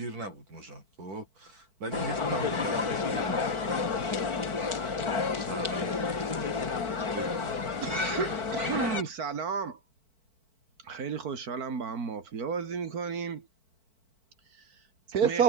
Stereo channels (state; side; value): late; left; 4.5 ms